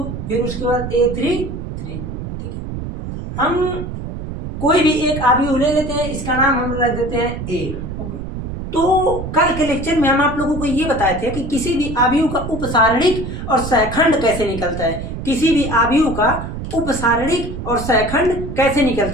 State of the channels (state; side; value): noise; right; rumble, 7 dB below the sound